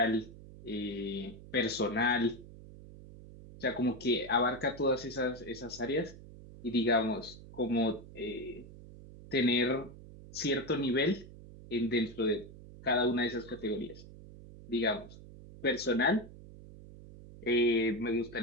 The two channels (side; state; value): right; noise; hum, 17 dB below the sound